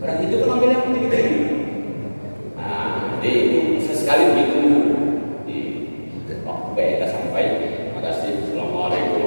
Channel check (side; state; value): both; inverted; correlation -1.00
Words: Orang Hindu kan ambil yang tinggi. Nah, jadi itu sesekali begitu. Baik, kita sampai. Terima kasih.